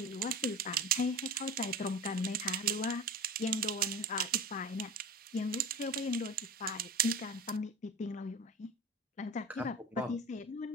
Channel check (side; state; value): both; normal; correlation 0.33